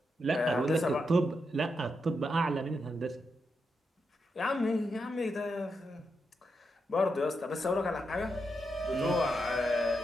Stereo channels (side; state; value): both; normal; correlation 0.84